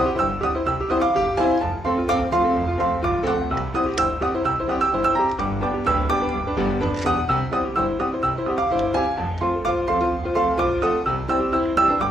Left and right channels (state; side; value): normal; both; correlation 0.80